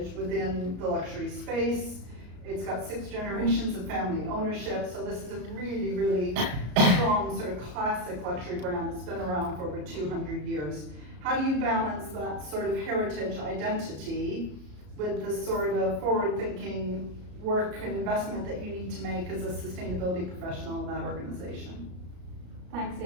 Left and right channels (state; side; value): late; left; 33 ms